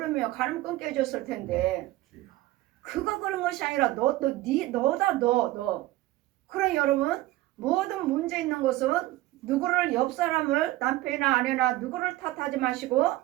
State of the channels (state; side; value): quieter; left; 17.1 dB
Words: 간음 끊게 해줬을 텐데 그가 그런 것이 아니라 너다. 그럼 여러분 모든 문제 있는 것은 누구를 옆 사람을 남편이나 아내나 누구를 탓하지 마시고